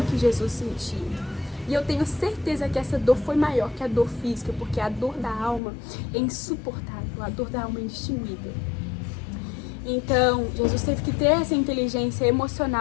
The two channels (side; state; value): right; drops out; at 5.6 s